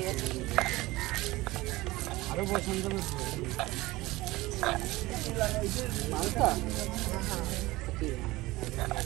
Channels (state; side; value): quieter; left; 19.6 dB